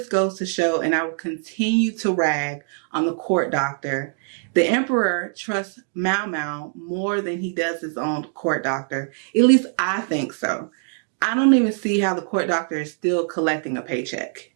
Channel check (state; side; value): silent; left; 58 dB below the other